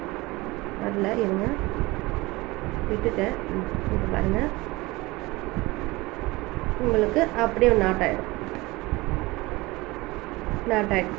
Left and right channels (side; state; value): left; quieter; 21.8 dB